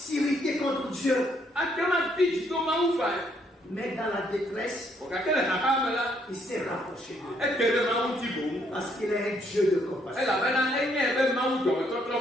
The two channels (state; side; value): normal; both; correlation 0.70